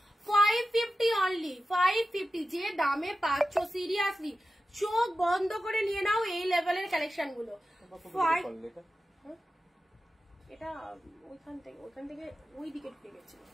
550 only, 550 যে দামে পাচ্ছ, সিরিয়াসলি চোখ বন্ধ করে নিয়ে নাও এই লেভেলের কালেকশন গুলো। এটা ওইখান থেকে ওই দিকে ঢুকে গেছিল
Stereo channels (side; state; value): both; normal; correlation 0.93